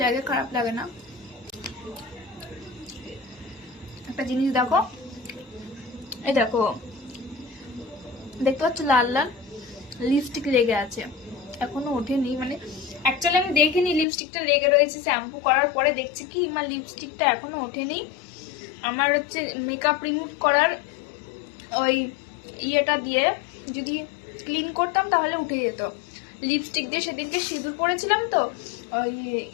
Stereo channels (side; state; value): right; drops out; at 14.1 s